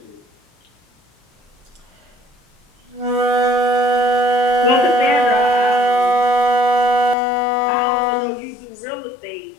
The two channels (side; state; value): right; drops out; at 7.2 s